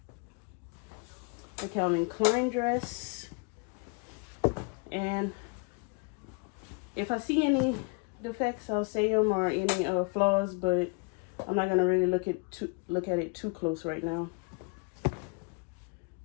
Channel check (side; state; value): right; quieter; 34.2 dB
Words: A Calvin Klein dress. And if I see any defects, I'll say them, or any flaws, but I'm not gonna really look at it too close right now.